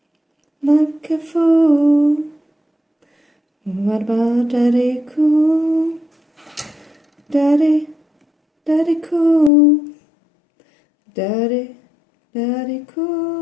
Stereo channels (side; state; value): right; drops out; at 9.5 s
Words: like a fool. What about Daddy cool? Daddy, Daddy cool. Daddy, Daddy